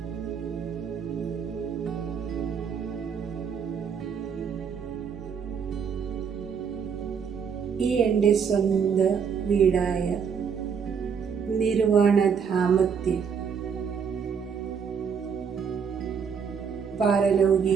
ഈ എൻ്റെ സ്വന്തം വീടായ നിർവാണധാമത്തിൽ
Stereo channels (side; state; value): left; quieter; 6.7 dB